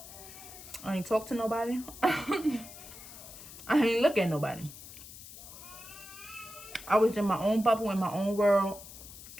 I ain't talk to nobody. I ain't look at nobody. I was in my own bubble, in my own world.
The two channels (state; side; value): noise; left; hiss, 15 dB below the sound